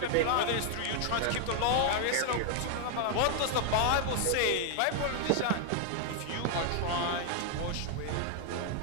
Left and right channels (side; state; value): both; different; correlation 0.00